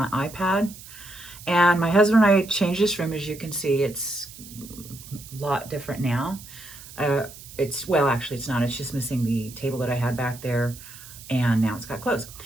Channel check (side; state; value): right; noise; hiss, 17 dB below the sound